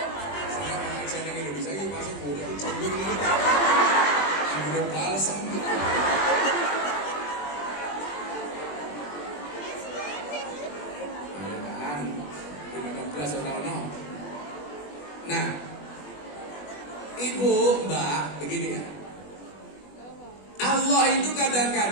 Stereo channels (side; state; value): right; late; 20 ms